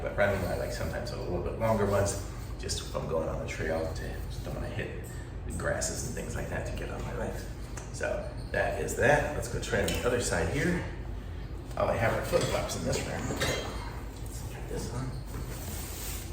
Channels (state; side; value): identical; both; correlation 1.00